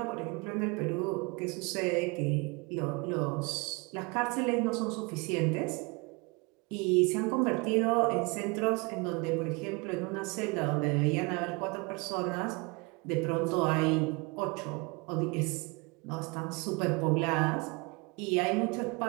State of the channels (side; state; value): left; quieter; 28.3 dB